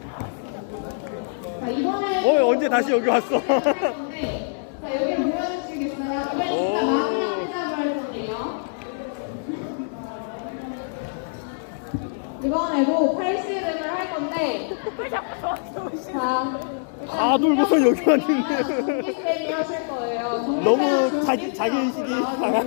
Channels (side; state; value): right; silent; digital silence